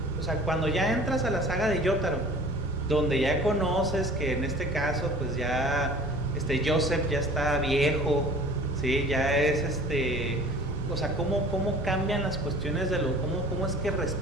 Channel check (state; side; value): normal; both; correlation 0.45